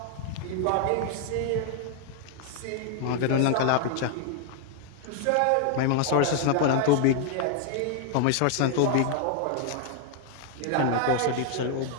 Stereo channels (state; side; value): different; both; correlation 0.00